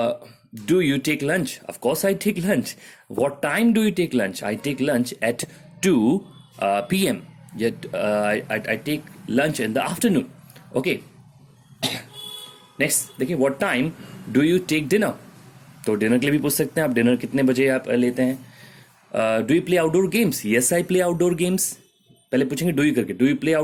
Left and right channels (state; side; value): identical; both; correlation 1.00